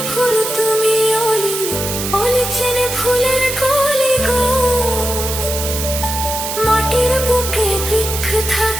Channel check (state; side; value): noise; right; hiss, 5 dB below the sound